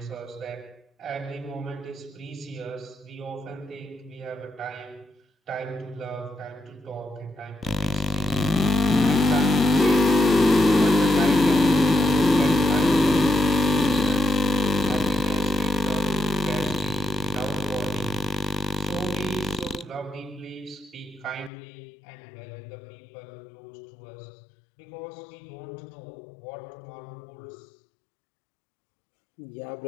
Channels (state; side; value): drops out; right; at 21.5 s